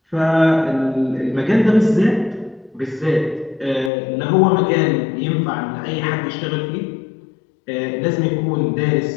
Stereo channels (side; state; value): right; drops out; at 3.9 s